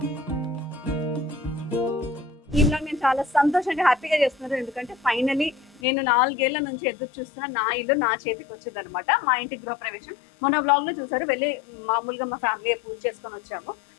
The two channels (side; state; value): right; drops out; at 5.8 s